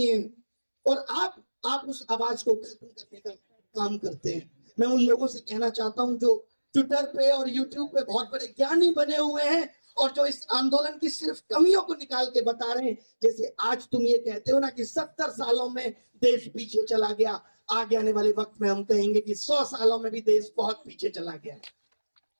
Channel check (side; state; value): both; inverted; correlation -1.00